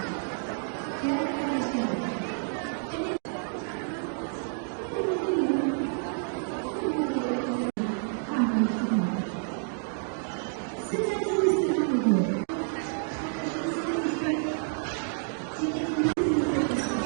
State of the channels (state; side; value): silent; left; digital silence